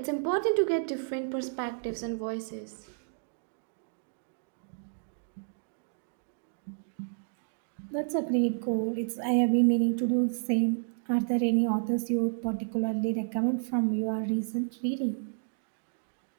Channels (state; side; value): silent; left; digital silence